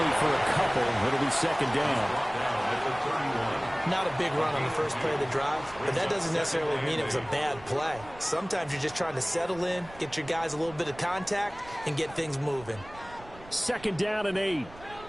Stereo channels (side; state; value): right; noise; rumble, 20 dB below the sound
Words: for a couple. It'll be 2nd down. Not a big run on the first play of the drive, but that doesn't necessarily mean it was a bad play. Sometimes you're just trying to settle in, get your guys a little bit of contact, and get things moving. 2nd down and 8.